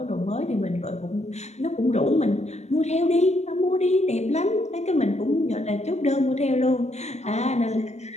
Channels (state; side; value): late; right; 0.32 ms